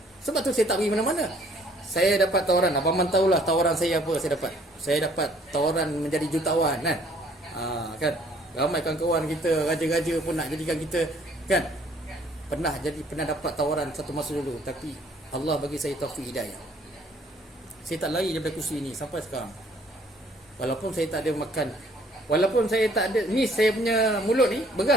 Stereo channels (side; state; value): both; normal; correlation 0.60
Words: Sebab tu saya tak pergi mana-mana. Saya dapat tawaran, Abang Man tahulah tawaran saya apa saya dapat. Saya dapat tawaran menjadi jutawan kan. Kan. Ramai kawan-kawan kita, raja-raja pun nak jadikan kita kan. Pernah dapat tawaran satu masa dulu, tapi Allah bagi saya taufik hidayah. Saya tak lari daripada kursi ini sampai sekarang. Walaupun saya tak ada makan, walaupun saya tak ada, ni saya punya mulut ni,